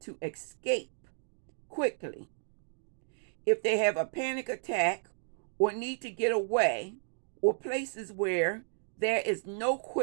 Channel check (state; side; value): silent; left; 56 dB below the other